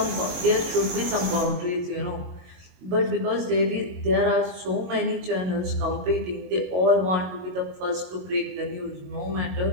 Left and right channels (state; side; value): late; left; 22 ms